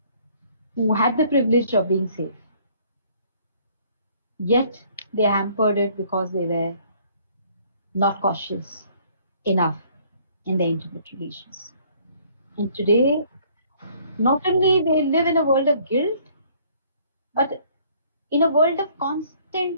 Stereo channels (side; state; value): both; inverted; correlation -0.60